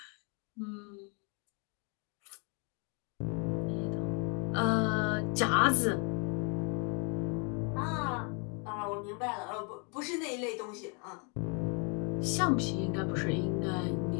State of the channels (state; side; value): quieter; right; 36.4 dB